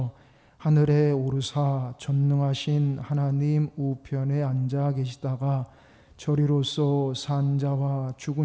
하늘에 오르사 전능하신 하나님 우편에 앉아 계시다가 저리로서 산 자와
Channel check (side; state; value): both; identical; correlation 1.00